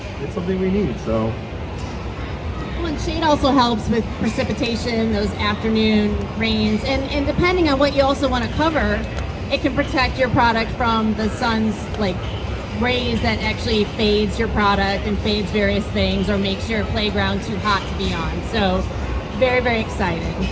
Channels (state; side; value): identical; both; correlation 1.00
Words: something we need. So. Well, and shade also helps with precipitation, those afternoon rains, and depending on what you also want to cover, it can protect your product from the sun's rays that actually fades your product and fades various things or makes your playground too hot to be on. So very, very excited.